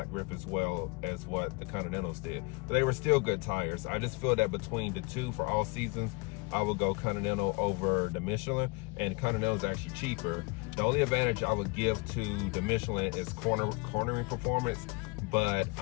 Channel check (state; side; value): quieter; right; 28.9 dB